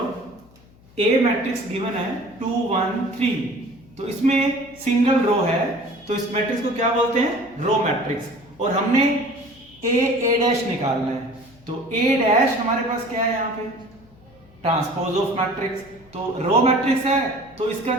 ए मैट्रिक्स गिवन है 2 1 3, तो इसमें सिंगल रो है, तो इस मैट्रिक्स को क्या बोलते हैं? Row matrix. और हमने ए डैश निकालना है, तो ए डैश हमारे पास क्या है यहाँ पे? Transpose of matrix. तो रो मैट्रिक्स है तो इसका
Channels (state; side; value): noise; left; hum, 27 dB below the sound